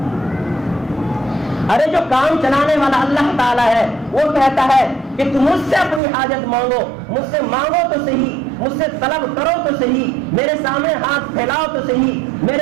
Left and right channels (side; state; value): left; drops out; at 6.0 s